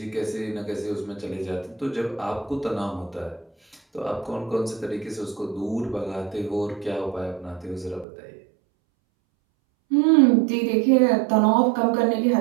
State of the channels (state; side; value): drops out; left; at 8.1 s